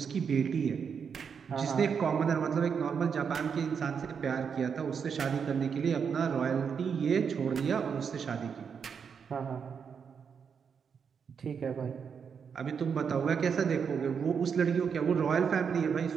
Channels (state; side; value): quieter; left; 6.6 dB